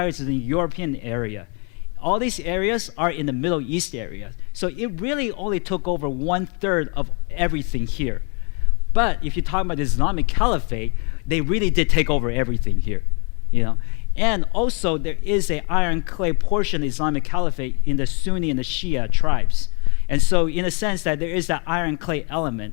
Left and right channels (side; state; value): right; quieter; 35.8 dB